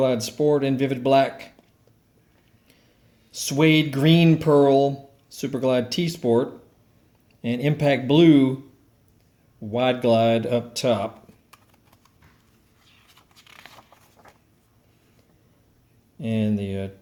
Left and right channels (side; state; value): both; identical; correlation 1.00